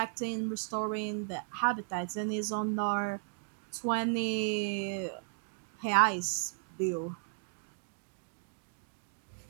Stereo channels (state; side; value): silent; left; digital silence